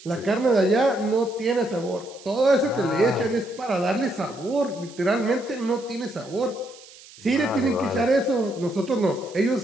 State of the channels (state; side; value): noise; right; hiss, 21 dB below the sound